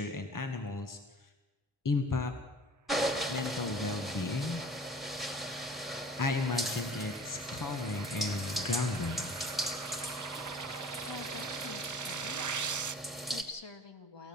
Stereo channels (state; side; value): normal; both; correlation 0.46